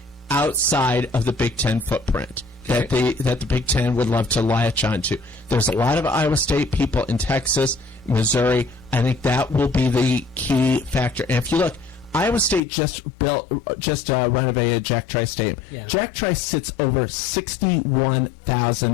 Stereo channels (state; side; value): drops out; right; at 12.6 s